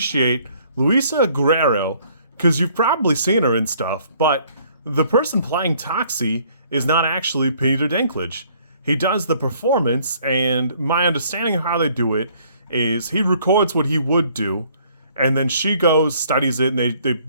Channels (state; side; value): inverted; both; correlation -0.61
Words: Luisa Guerreiro, because you've probably seen her in stuff, but the person playing Toxie is not actually Peter Dinklage. He does the performance, and my understanding of how they do it is he records what he would do, and then she goes, studies it, and they